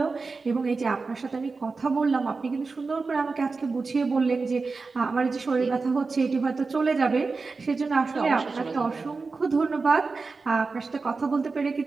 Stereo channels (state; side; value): quieter; left; 4.2 dB